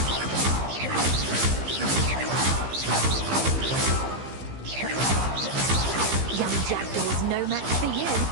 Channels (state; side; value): late; left; 15 ms